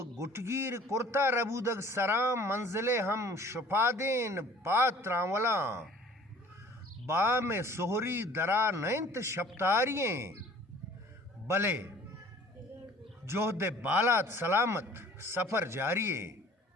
گٹگیر کرتا ربودگ سرام منزلے ہم شپادین پاتراں ولاں با میں سہری درا نینت شپتارییں بلے جوہد بالات سلامت سفر جاریے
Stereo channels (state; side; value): normal; both; correlation 0.50